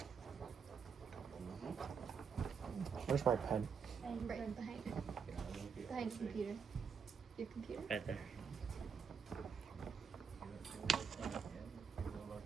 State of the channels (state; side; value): quieter; left; 6.3 dB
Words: Where's my pen? Right behind. Behind the computer. Your computer? Right there.